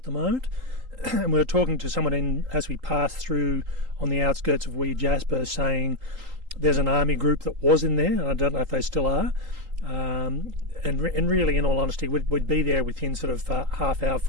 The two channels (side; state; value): left; late; 3.8 ms